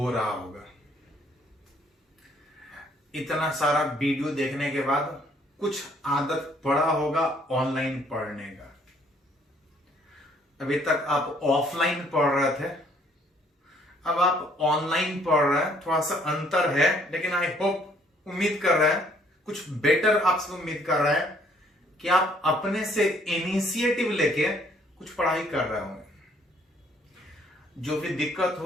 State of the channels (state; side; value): normal; both; correlation 0.63